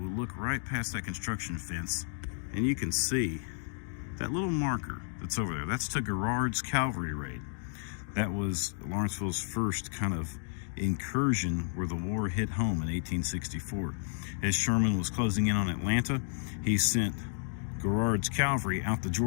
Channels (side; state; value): right; silent; digital silence